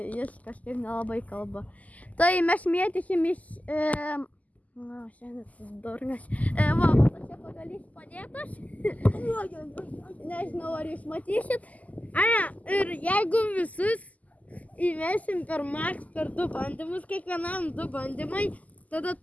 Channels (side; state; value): right; late; 0.076 ms